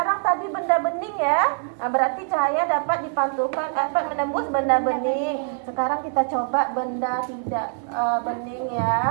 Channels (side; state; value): left; silent; 61 dB below the other